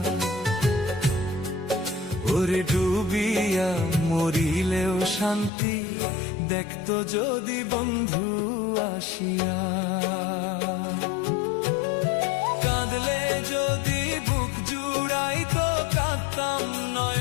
ওরে ডুবিয়া মরিলেও শান্তি দেখতো যদি বন্ধু আসিয়া। কাঁদলে যদি বুক জুড়াইতো কাঁদতাম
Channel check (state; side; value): drops out; right; at 5.5 s